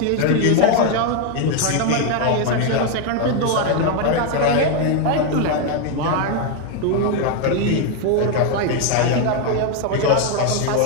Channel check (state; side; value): different; both; correlation 0.01